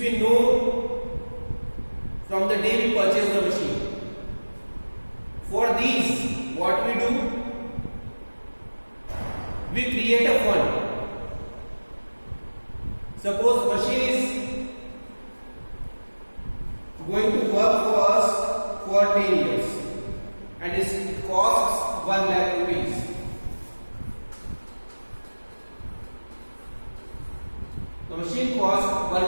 know from the day we purchase the machine. For these, what we do? We create a fund. Suppose machine is going to work for us for 10 years and it costs 1 lakh rupees. The machine costs 1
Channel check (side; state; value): both; inverted; correlation -1.00